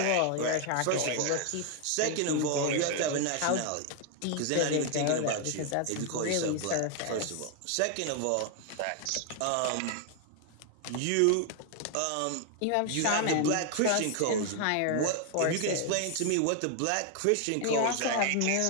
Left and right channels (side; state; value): both; different; correlation 0.00